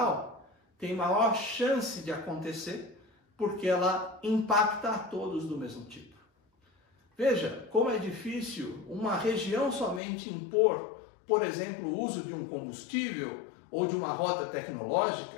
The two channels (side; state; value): right; drops out; at 10.0 s